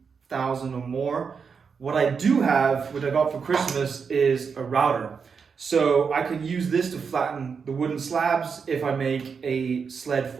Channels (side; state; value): left; quieter; 5.9 dB